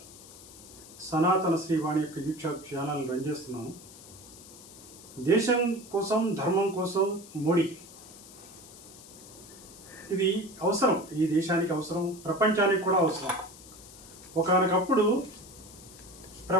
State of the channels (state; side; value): noise; left; hiss, 18 dB below the sound